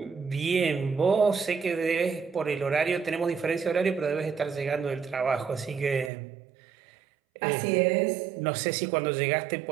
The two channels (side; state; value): left; drops out; at 6.1 s